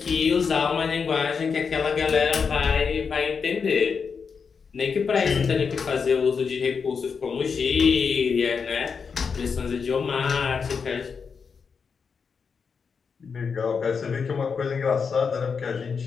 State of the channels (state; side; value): quieter; right; 5.8 dB